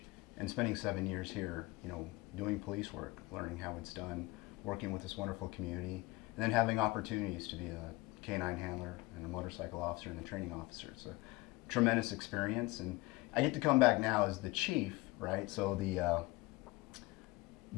and spending 7 years here, you know, doing police work, learning how it's done, working with this wonderful community, and then having opportunities to be a canine handler and a motorcycle officer and a training officer. It's a tremendous experience, and I get to come back now as the chief, right? So the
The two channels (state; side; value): quieter; right; 22.1 dB